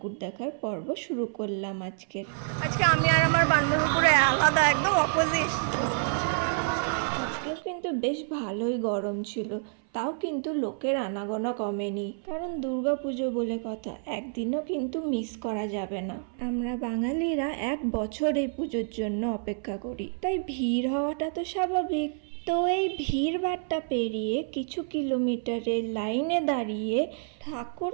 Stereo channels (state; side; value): silent; left; 57 dB below the other